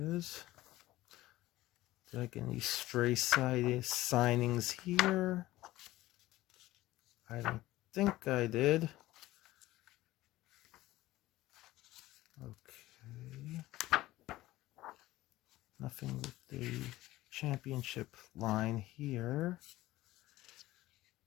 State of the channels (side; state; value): right; quieter; 16.9 dB